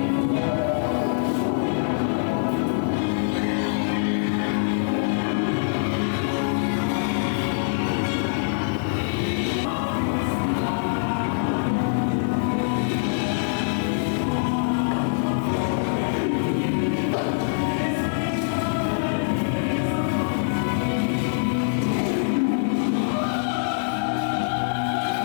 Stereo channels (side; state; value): right; silent; digital silence